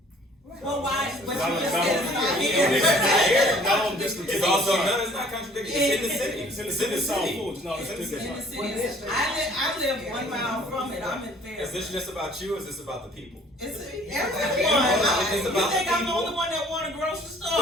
Well, why? But you Not- just not- said it's not It's here. not here. No, this is It's also, no, it's not contradictory. It's in the city. It's in the city of South Fulton. No, it's in the In the city. city, I live 1 mile from it. I'm in Is this Fairfield. just about you or is this about the people? It's It's everyone. You about think the I'm the people. only one that want a grocery store?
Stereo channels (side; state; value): both; normal; correlation 0.55